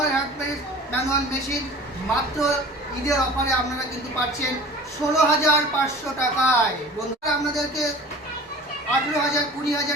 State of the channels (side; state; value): both; normal; correlation 0.42